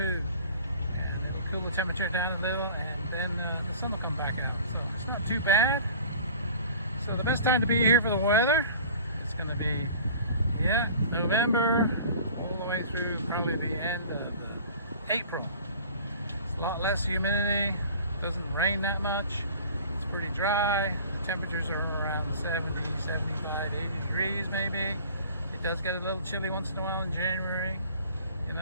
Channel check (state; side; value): inverted; both; correlation -0.45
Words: and it'll cool the temperature down a little, and then the sun will come back out. So it's not too bad. So the best time to be here for the weather, it's going to be, November all the way through probably the end of April. It's a lot less humidity, doesn't rain that much, it's pretty dry, the temperatures are around 70, 75, 80 degrees maybe. It does get a little chilly once in a while in January.